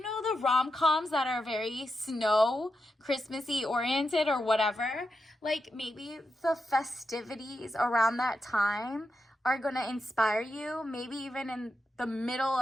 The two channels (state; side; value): normal; both; correlation 0.87